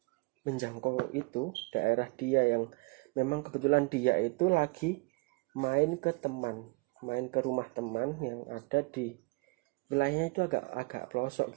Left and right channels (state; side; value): quieter; left; 28.1 dB